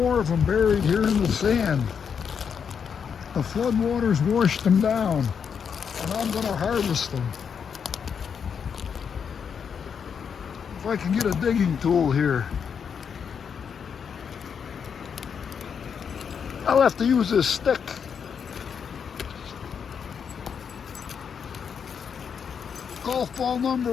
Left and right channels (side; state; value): right; quieter; 6.9 dB